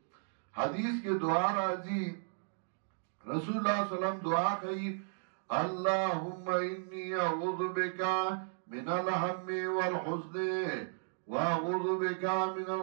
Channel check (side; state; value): left; silent; digital silence